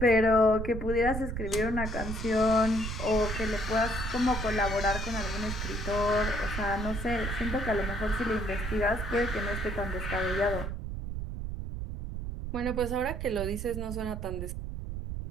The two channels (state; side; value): noise; right; rumble, 5 dB below the sound